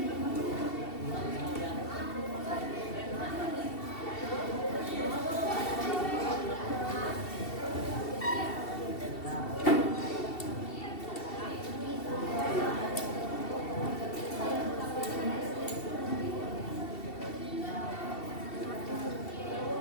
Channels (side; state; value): right; late; 2.7 ms